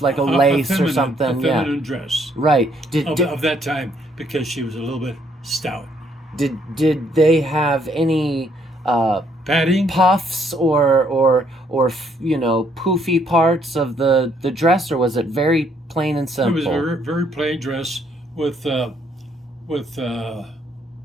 like a lace or something. A feminine dress Right. of that time because she was a little bit stout. Did they have any Padding? puffs or poofy parts of the dress, or was it very plain and It simple? was a very, very plain dress with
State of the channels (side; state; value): both; normal; correlation 0.69